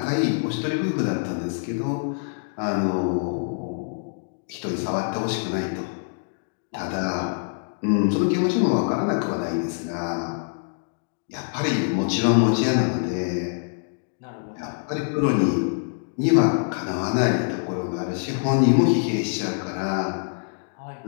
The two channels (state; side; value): silent; right; digital silence